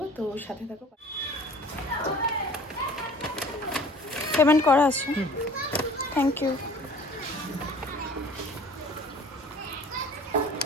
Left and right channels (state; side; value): normal; both; correlation 0.48